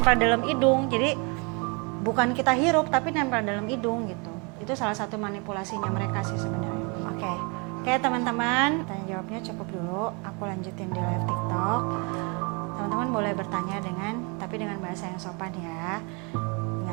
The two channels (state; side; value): quieter; left; 31.9 dB